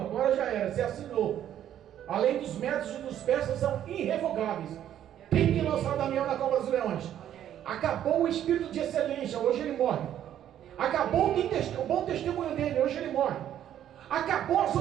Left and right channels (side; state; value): left; quieter; 10.9 dB